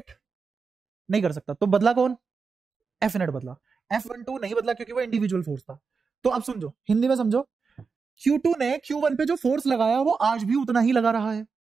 नहीं कर सकता, तो बदला कौन, F नेट बदला, F12 नहीं बदला क्योंकि वो इंडिविजुअल फोर्स था। तो अब समझो, हिंदी में समझो, Q2 ने Q1 पे जो फोर्स लगाया वो आज भी उतना ही लगा रहा है,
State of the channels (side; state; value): left; quieter; 5.1 dB